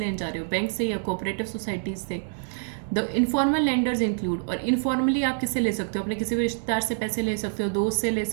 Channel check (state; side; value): silent; left; digital silence